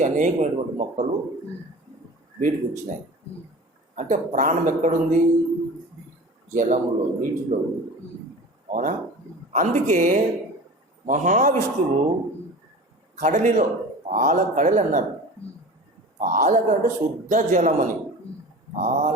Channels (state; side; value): normal; both; correlation 0.37